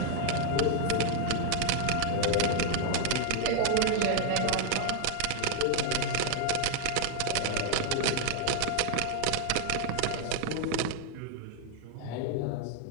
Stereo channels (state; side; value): different; both; correlation 0.00